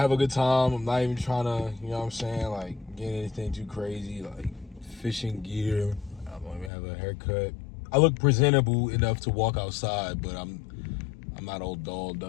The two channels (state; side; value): drops out; right; at 6.7 s